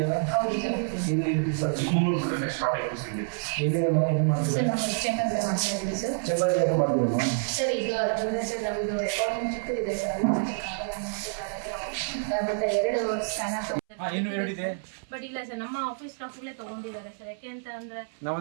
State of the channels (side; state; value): left; silent; 59 dB below the other